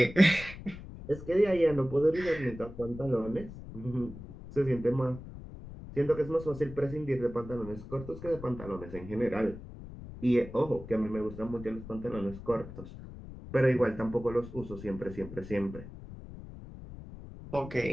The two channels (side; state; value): left; noise; rumble, 13 dB below the sound